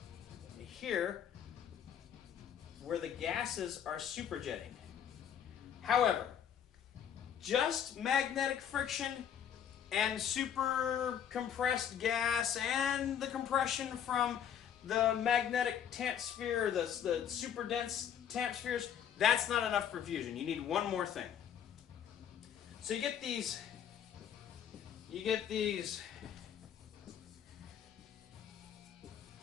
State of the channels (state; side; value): quieter; right; 8.9 dB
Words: and here, where the gases are superjetting. However, just magnetic friction and super compressed gas and the compression from the magnetic tamp sphere, the super dense tamp spheres, that's not enough for fusion. You need one more thing. So you get these